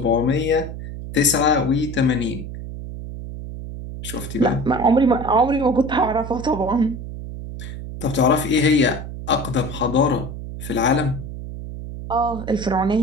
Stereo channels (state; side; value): noise; right; hum, 9 dB below the sound